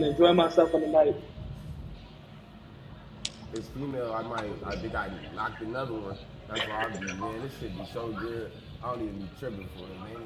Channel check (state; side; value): identical; both; correlation 1.00